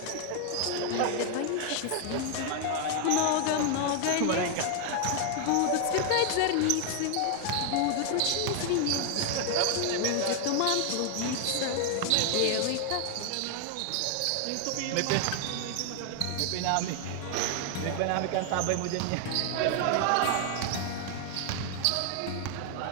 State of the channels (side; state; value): both; different; correlation 0.00